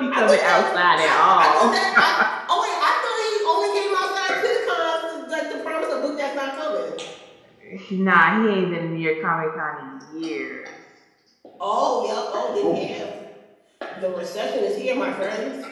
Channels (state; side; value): identical; both; correlation 1.00